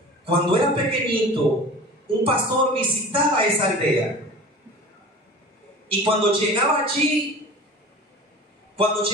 cuando era pequeñito, un pastor visitaba esa aldea. Y cuando llegaba allí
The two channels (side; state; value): both; normal; correlation 0.38